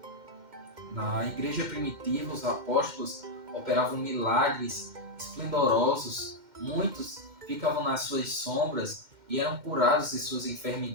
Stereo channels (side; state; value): left; late; 2.1 ms